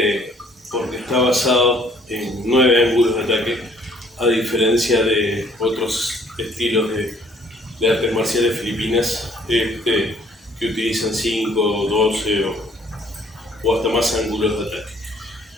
porque está basado en 9 ángulos de ataque, a diferencia de otros estilos de artes marciales filipinas que utilizan 5, 12 o hasta más ángulos de ataque.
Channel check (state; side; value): normal; both; correlation 0.61